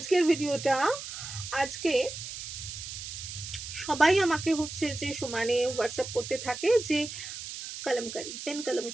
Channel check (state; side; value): noise; right; hiss, 9 dB below the sound